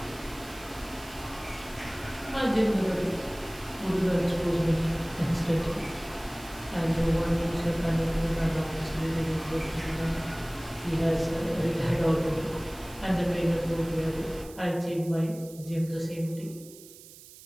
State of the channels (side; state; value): right; noise; hiss, 19 dB below the sound